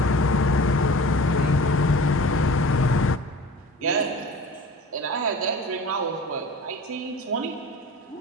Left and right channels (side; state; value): both; normal; correlation 0.40